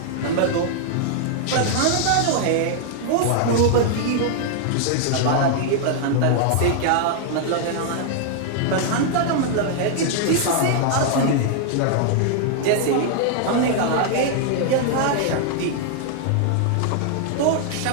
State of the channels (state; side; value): different; both; correlation 0.00